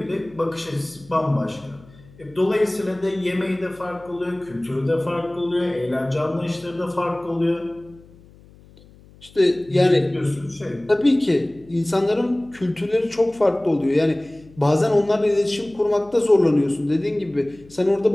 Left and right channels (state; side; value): noise; left; hum, 25 dB below the sound